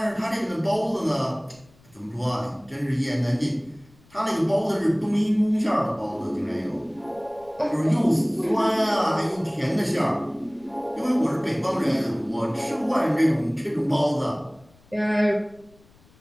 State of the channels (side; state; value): left; noise; rumble, 29 dB below the sound